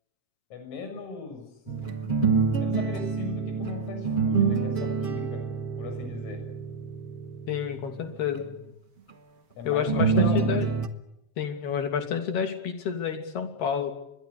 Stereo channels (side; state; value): right; late; 7.5 ms